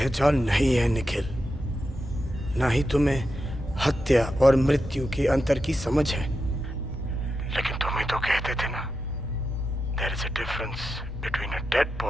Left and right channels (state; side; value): normal; both; correlation 0.88